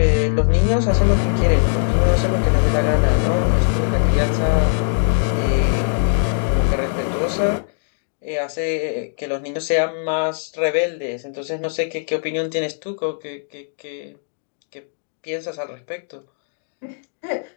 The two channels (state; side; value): silent; right; digital silence